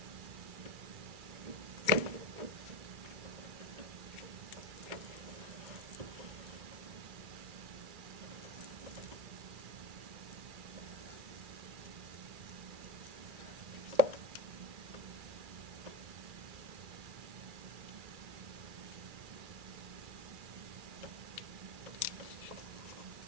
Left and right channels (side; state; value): left; late; 2.3 ms